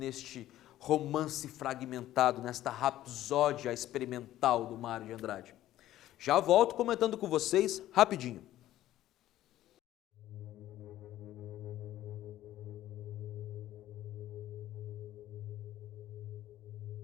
romance fragmentado, nesta rapsódia experimental do Mário de Andrade? Já volto comentando com vocês rapidinho.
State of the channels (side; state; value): right; quieter; 13.8 dB